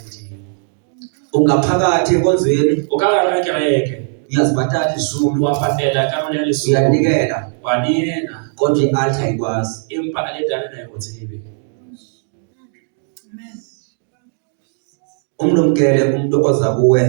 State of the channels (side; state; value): left; silent; 68 dB below the other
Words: Ungaphakathi enkonzweni O ka gare ga kereke, uyazibhatala izumi wa patela karolo ya lesome, uyanikela wa neela, kodwa i-altar ayikwazi. empa altare ga e go tsebe. Umlumkele umuntu oza kuwe